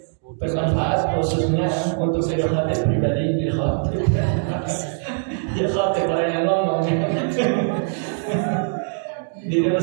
bermanfaat khususnya untuk diri khatib pribadi, diri khatib. Diri khatib orang yang ngomong. Diri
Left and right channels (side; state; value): left; silent; digital silence